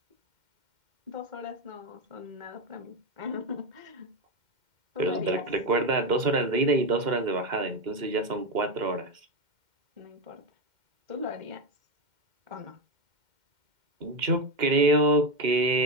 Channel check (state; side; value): late; left; 2.1 ms